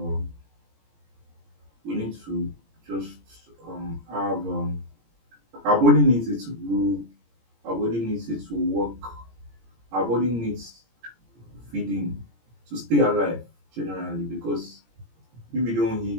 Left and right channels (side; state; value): left; late; 17 ms